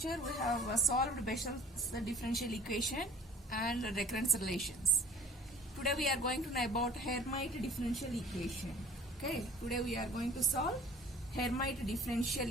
we have solved Bessel's differential equation and recurrence relations. Today we are going to know about Hermite differential equation. Okay. Today we are going to solve Hermite differential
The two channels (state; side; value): normal; both; correlation 0.48